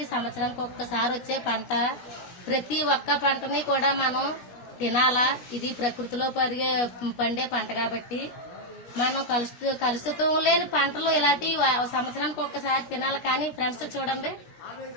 సంవత్సరానికి ఒక్కసారి వచ్చే పంట. ప్రతి ఒక్క పంటని కూడా మనం తినాలా. ఇది ప్రకృతిలో పండే పంట కాబట్టి మనం కలుషితం లేని పంటలు ఇలాంటి సంవత్సరానికి ఒక్కసారి తినాలి. కానీ ఫ్రెండ్స్ చూడండి,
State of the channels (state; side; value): late; right; 17 ms